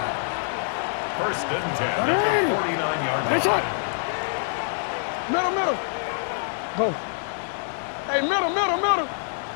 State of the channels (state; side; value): silent; right; digital silence